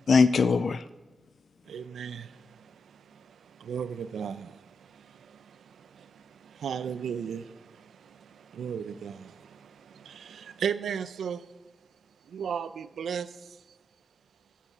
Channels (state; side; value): normal; both; correlation 0.82